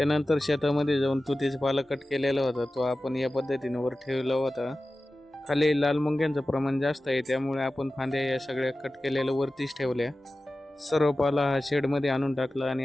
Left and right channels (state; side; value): normal; both; correlation 0.95